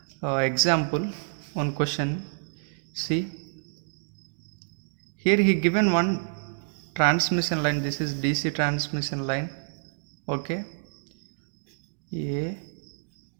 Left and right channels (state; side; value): silent; left; digital silence